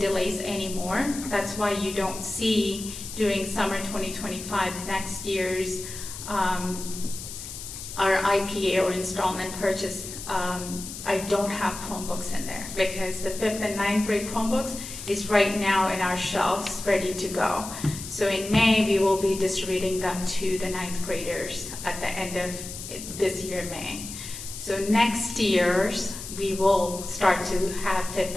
anymore. That's why you don't see during summer 2025 next year's our IPA or installment purchase. I don't have Chromebooks in there because the 5th and 9th grade Chromebooks is right now in our shelves ready to go. So in May, we will be distributing them to the 9th graders at the end of this year, May. So next year's, we will start to have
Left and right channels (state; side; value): noise; left; hiss, 10 dB below the sound